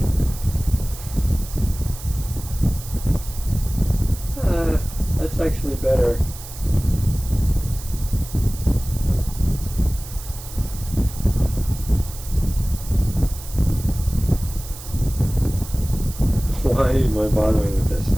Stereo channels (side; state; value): right; noise; hiss, 14 dB below the sound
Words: That's actually better. Why am I bothering with this?